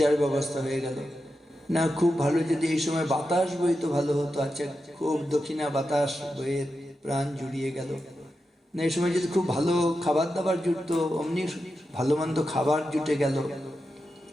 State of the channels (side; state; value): both; normal; correlation 0.89